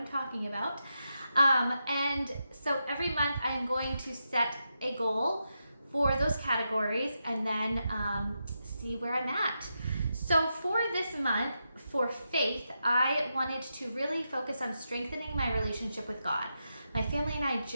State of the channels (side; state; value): both; inverted; correlation -0.86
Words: talking about. And so every month I am going to set a goal for those categories and then see where I'm at. So for this month, for faith, I wanted to really focus on strengthening my relationship with God. My family and I